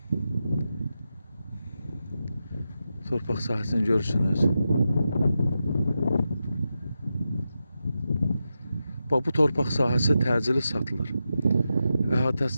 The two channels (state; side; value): inverted; both; correlation -0.89